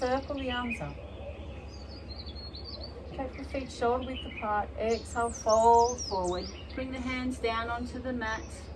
the arms up. Take the feet shoulder width apart. Exhale, fold forward. Bring the hands down onto the mat.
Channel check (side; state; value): both; identical; correlation 1.00